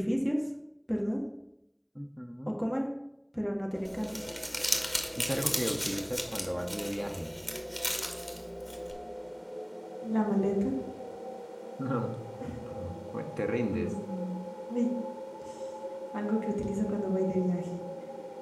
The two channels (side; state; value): both; identical; correlation 1.00